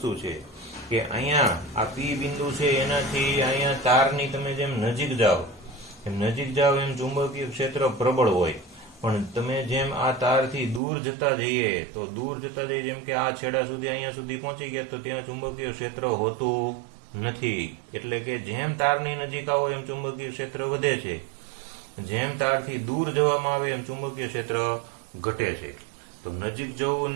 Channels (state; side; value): drops out; left; at 10.8 s